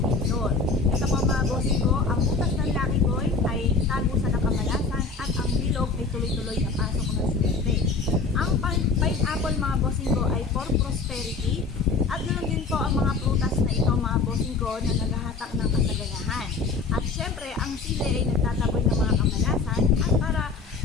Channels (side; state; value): right; quieter; 4.3 dB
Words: door. Ito po mga bossing ko, ang butas ng Lucky Boy ay tago sa nakamalasan at ang bilog ay tuloy-tuloy na pasok ng swerte. Ang pineapple mga bossing ko ay for prosperity at ganoon din po ang mga prutas na ito mga bossing ko na naghahatak ng kasaganahan. At syempre ang sili ay nagtataboy ng mga kamalasan at para